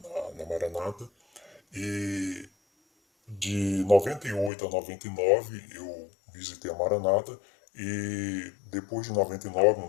na Maranata. E de 98 a 99 eu visitei a Maranata. E depois de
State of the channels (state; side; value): drops out; right; at 4.5 s